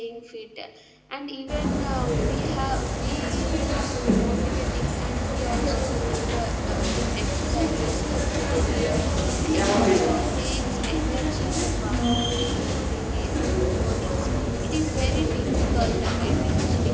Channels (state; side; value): identical; both; correlation 1.00